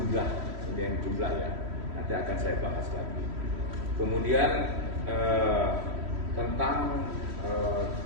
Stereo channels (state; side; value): late; left; 3.1 ms